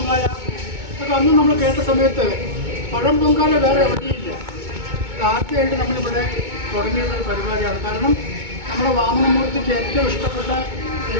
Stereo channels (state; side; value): late; left; 2.2 ms